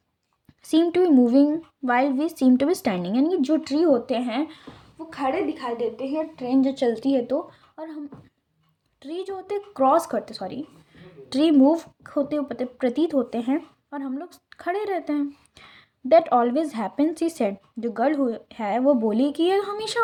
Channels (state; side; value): identical; both; correlation 1.00